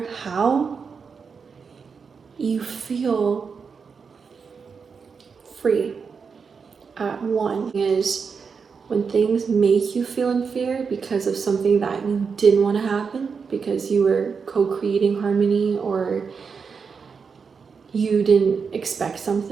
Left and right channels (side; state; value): left; quieter; 5.6 dB